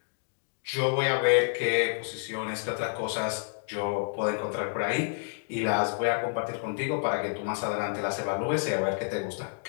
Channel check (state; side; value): silent; right; digital silence